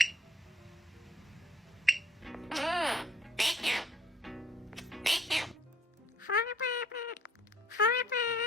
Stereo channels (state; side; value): normal; both; correlation 0.60